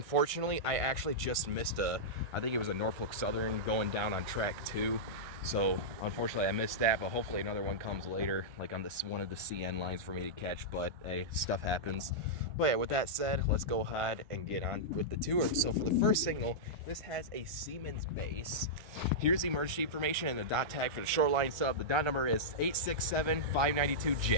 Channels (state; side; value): late; left; 1.5 ms